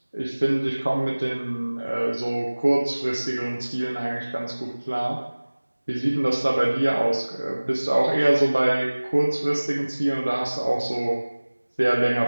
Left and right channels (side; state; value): both; inverted; correlation -1.00